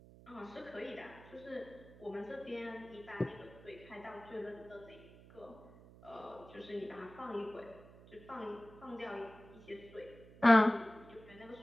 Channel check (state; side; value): noise; right; hum, 20 dB below the sound